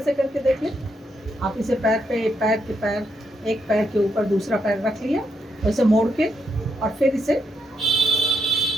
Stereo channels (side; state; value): both; normal; correlation 0.80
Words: से करके देख लें। आप इसे पैर एक पैर के ऊपर दूसरा पैर रख लिया, तो इसे मोड़ के और फिर इसे,